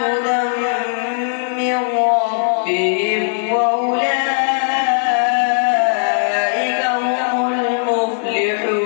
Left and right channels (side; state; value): right; silent; 63 dB below the other